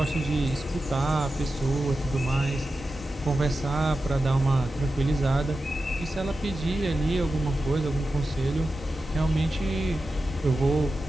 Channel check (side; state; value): both; normal; correlation 0.92